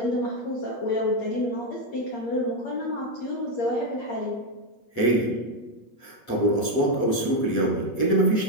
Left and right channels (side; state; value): right; late; 7.9 ms